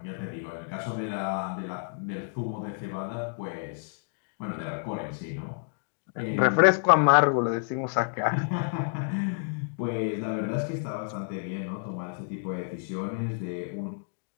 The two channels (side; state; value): right; silent; digital silence